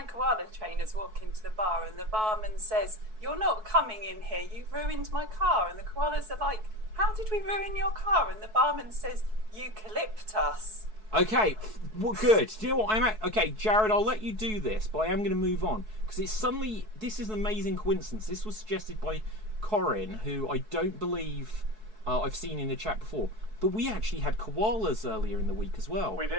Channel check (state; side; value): late; left; 4.6 ms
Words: koala trainers walk into the bar, and the barman says, you're not coming in here, you've ruined my car. And the koalas are like, how did we ruin your car? And the barman says, eucalyptus. Okay, well, good. Do you know what okay, Jared, I'll let you do this, but I am going to move on because it's suddenly, this is an amazing coincidence. This was suggested by Corin, who I don't believe I've seen in the chat before. But we actually had koalas earlier in the week as well. We